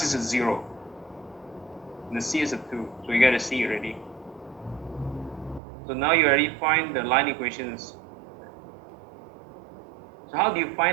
is a 0. And the c is a 2. So you get a c already. So now you already find the line equations. So how do you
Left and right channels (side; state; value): left; drops out; at 5.6 s